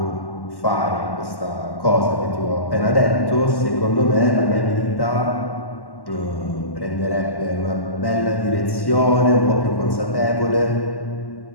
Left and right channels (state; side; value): late; right; 1.1 ms